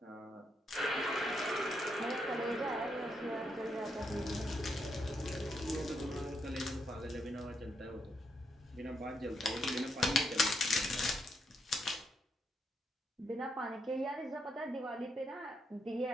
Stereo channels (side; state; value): both; normal; correlation 0.78